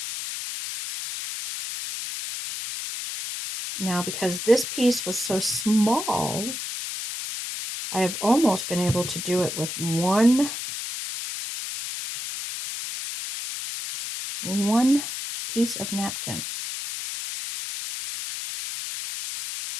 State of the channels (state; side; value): noise; left; hiss, 6 dB below the sound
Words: Now, because this piece was so small, I have almost been able to do it with one piece of napkin.